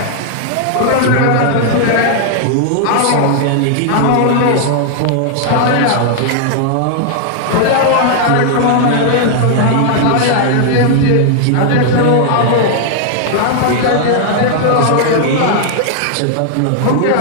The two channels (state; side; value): different; both; correlation -0.01